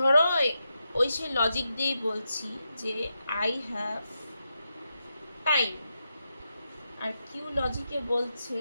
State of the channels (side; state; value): both; inverted; correlation -0.86